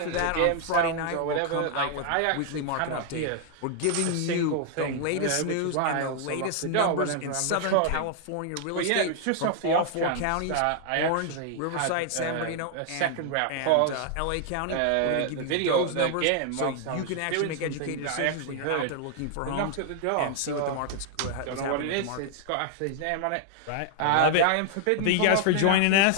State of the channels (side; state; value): both; different; correlation 0.00